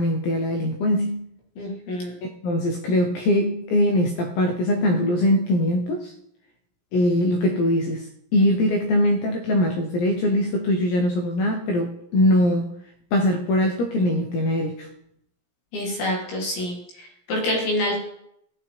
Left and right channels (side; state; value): right; late; 17 ms